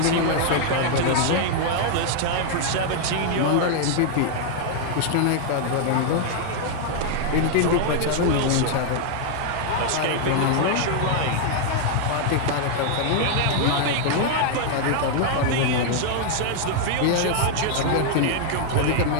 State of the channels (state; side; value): different; both; correlation 0.00